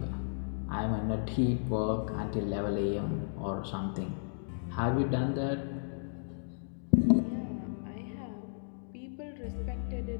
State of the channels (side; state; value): right; silent; digital silence